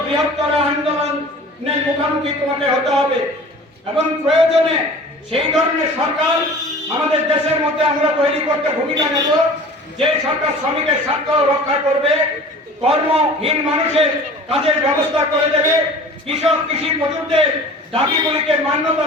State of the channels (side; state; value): both; normal; correlation 0.43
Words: বৃহত্তর আন্দোলনের মুখোমুখি তোমাকে হতে হবে। এবং প্রয়োজনে সেই ধরনের সরকার আমাদের দেশের মধ্যে আমরা তৈরি করতে ভূমিকা নেব, যে সরকার শ্রমিকের স্বার্থ রক্ষা করবে, কর্মহীন মানুষের কাজের ব্যবস্থা করে দেবে, কৃষক কৃষি মজুরদের দাবিগুলিকে মান্যতা